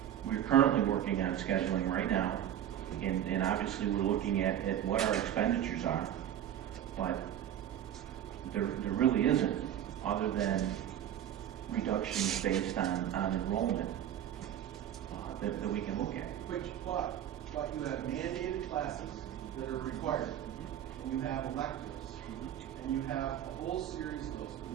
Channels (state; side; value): quieter; left; 10.6 dB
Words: We're currently working on scheduling right now, and obviously we're looking at what our expenditures are, but there really isn't, other than reductions based on enrollment that we can look at. But you have mandated classes that are required, and you have electives, and you have a whole series of those